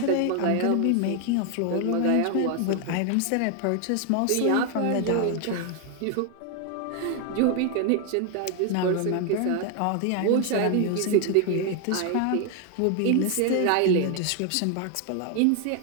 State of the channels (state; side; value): different; both; correlation 0.01